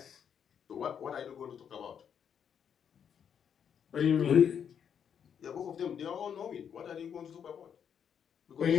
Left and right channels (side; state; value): right; quieter; 8.0 dB